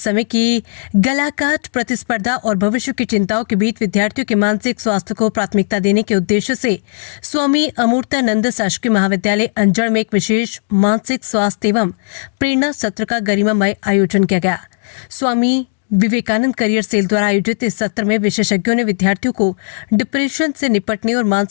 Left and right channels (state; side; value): silent; right; digital silence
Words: की गलाकाट प्रतिस्पर्धा और भविष्य की चिंताओं के बीच विद्यार्थियों के मानसिक स्वास्थ्य को प्राथमिकता देने के उद्देश्य से स्वामी अमूर्तानंद शासकीय महाविद्यालय अंजड़ में एक विशेष मानसिक स्वास्थ्य एवं प्रेरणा सत्र का गरिमामय आयोजन किया गया। स्वामी विवेकानंद करियर सेल द्वारा आयोजित इस सत्र में विशेषज्ञों ने विद्यार्थियों को डिप्रेशन से निपटने और